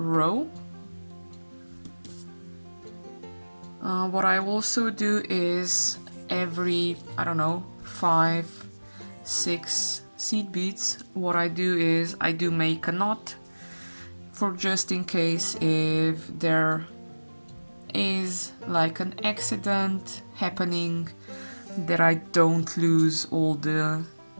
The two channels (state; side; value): inverted; both; correlation -1.00